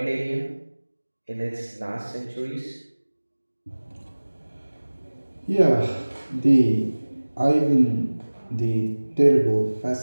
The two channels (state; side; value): inverted; both; correlation -1.00